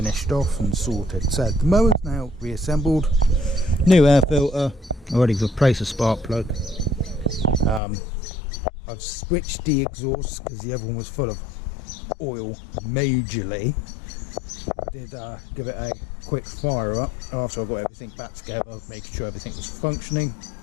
off and sorted. So the mower's now reassembled, new air filter, already replaced a spark plug. I've switched the exhaust because the other one was full of oil majorly. I did give it a quick fire up after I got everything back together, making sure everything was functioning,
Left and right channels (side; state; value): right; drops out; at 7.8 s